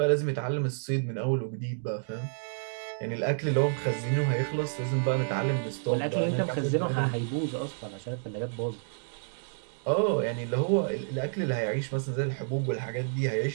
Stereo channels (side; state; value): left; silent; digital silence